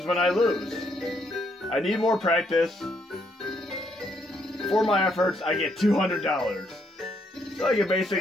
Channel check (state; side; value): normal; both; correlation 0.73